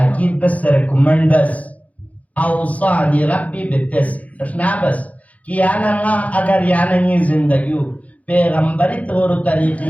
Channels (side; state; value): right; late; 0.070 ms